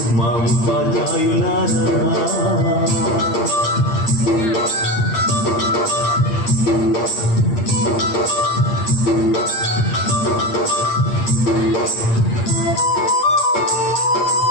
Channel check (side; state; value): right; late; 8.6 ms